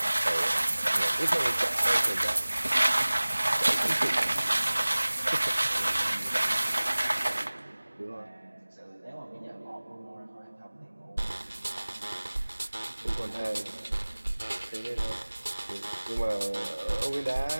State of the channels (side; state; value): both; inverted; correlation -1.00